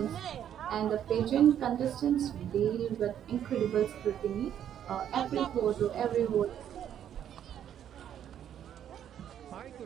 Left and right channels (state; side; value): quieter; left; 9.9 dB